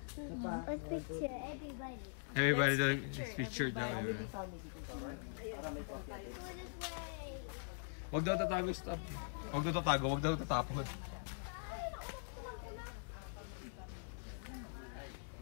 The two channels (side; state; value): right; silent; digital silence